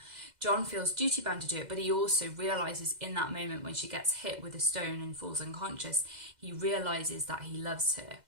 John feels duty bound to do it, but he also realises in that moment when she gets hit with a stone and falls unconscious, he realises that he loves her.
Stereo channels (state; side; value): late; left; 2.0 ms